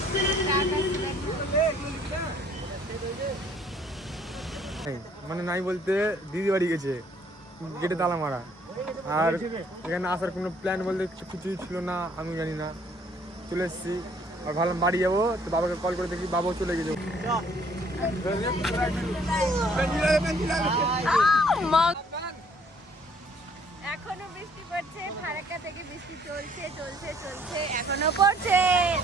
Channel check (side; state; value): both; normal; correlation 0.61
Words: মানে নাই বলতে দিদি বাড়ি গেছে, গেটে তালা মারা, আর এখানে আসার কোনো প্ল্যান বলতে কিছুই ছিল না, আমি জানি না। চলে এসেছি আর ভাবলাম বাড়ি যাবো, তো বাবাকে কল করে দেখি বাবাও চলে গেছে। এখনো বৃষ্টি পড়ছে, ফারাক্কা থেকে বৃষ্টি চলছে এখনো পড়ছে।